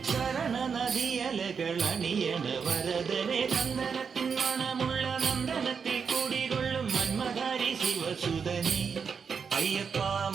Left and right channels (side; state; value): left; quieter; 6.1 dB